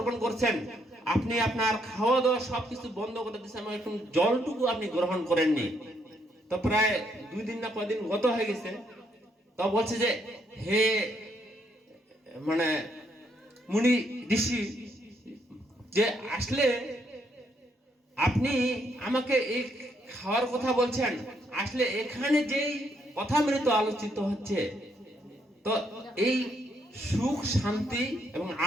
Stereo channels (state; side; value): normal; both; correlation 0.73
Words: করছেন, আপনি আপনার খাওয়া দাওয়া সবকিছু বন্ধ করে দিচ্ছেন, এখন জলটুকু আপনি গ্রহণ করেননি। তো প্রায় 2 দিন না কয়দিন গত হয়ে গেছে। তো বলছে যে হে মানে মুনি ঋষি, যে আসলে আপনি আমাকে এই খাওয়ার কথা বলছেন, আসলে এখানে যেই কথামৃত আলোচিত হচ্ছে, তো এই সুখ শান্তি এবং